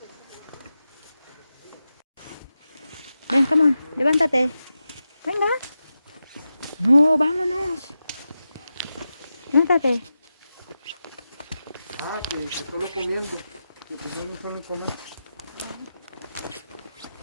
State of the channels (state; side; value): inverted; both; correlation -0.91